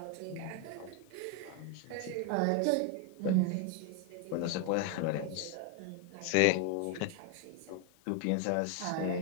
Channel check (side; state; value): both; different; correlation 0.01